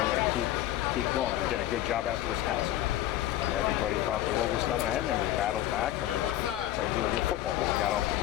and keep going. We did a good job after Wisconsin. And everybody thought the world was coming ahead, and we battled back and we played really good football, but we got off to a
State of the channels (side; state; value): right; quieter; 13.8 dB